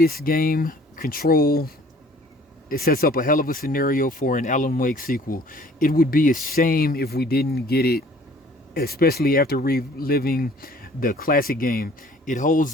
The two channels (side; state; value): both; normal; correlation 0.53